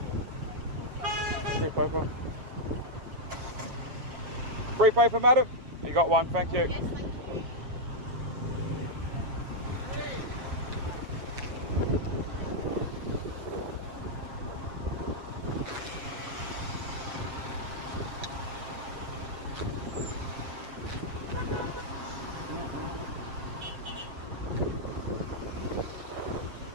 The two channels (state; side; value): late; left; 7.6 ms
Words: Free paper. Free paper, madam? You got one, thank you. Yes, thank you.